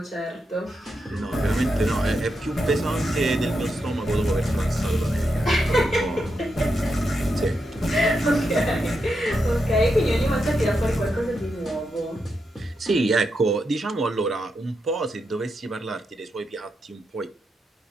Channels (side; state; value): both; normal; correlation 0.85